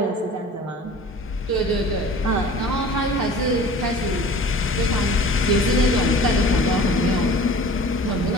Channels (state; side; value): normal; both; correlation 0.43